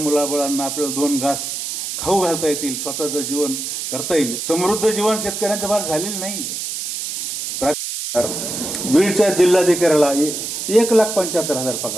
आपल्याला 2 घास खाऊ घालता येतील, स्वतःचं जीवन करता येईल. समृद्ध जीवन शेतकऱ्यांचं फार झालेलं नाही. बीडच्या जिल्हाधिकाऱ्याला 1,75,000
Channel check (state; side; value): noise; right; hiss, 5 dB below the sound